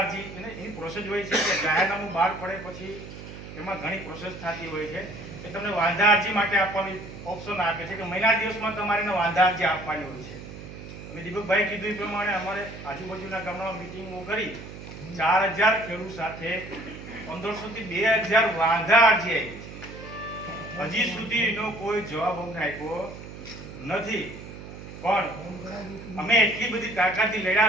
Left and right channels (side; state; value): right; noise; hum, 13 dB below the sound